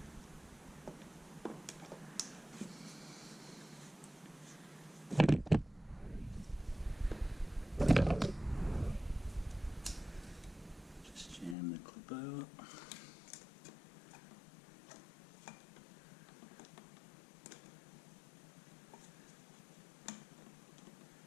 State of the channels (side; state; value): right; drops out; at 11.6 s